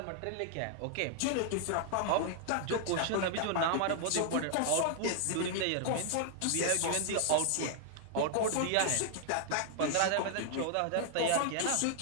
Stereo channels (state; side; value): different; both; correlation 0.00